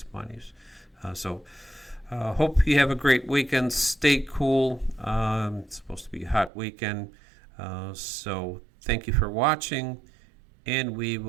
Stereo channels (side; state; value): left; drops out; at 6.5 s